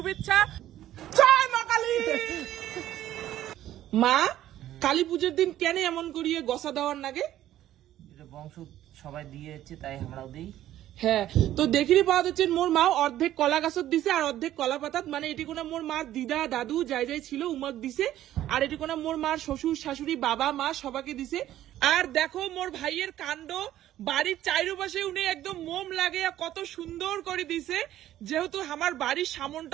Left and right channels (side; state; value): left; quieter; 13.0 dB